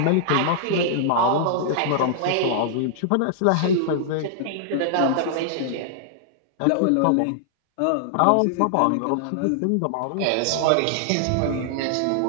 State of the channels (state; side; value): different; both; correlation -0.01